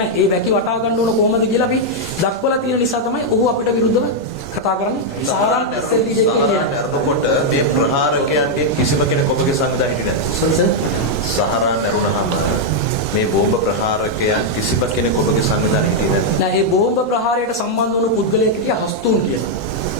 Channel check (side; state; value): both; normal; correlation -0.02